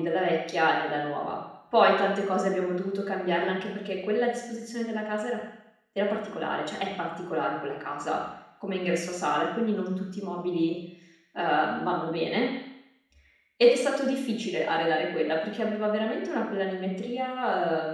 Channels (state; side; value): identical; both; correlation 1.00